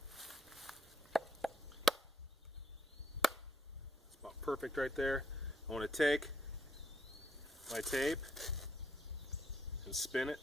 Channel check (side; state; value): both; normal; correlation 0.76